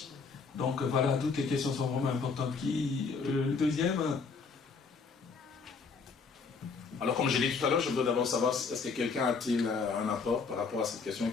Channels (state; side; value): quieter; right; 4.9 dB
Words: Donc voilà, toutes les questions sont vraiment importantes. Le deuxième... Alors, comme je l'ai dit tout à l'heure, je veux d'abord savoir est-ce que quelqu'un a-t-il un apport par rapport à cette question